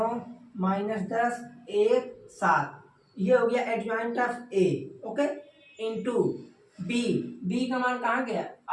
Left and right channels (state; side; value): identical; both; correlation 1.00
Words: -10 1 7। ये हो गया adjoint of A. Okay, into B का मान कहाँ गया?